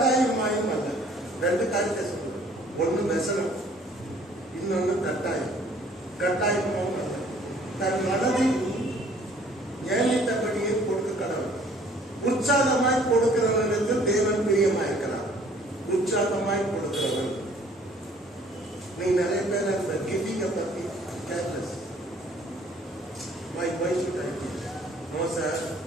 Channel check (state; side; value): normal; both; correlation 0.57